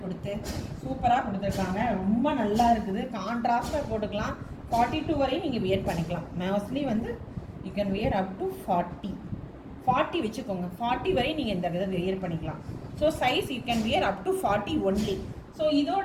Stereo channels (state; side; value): identical; both; correlation 1.00